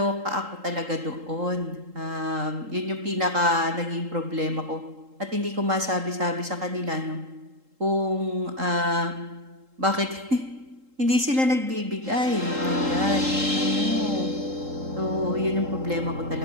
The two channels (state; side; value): late; left; 3.8 ms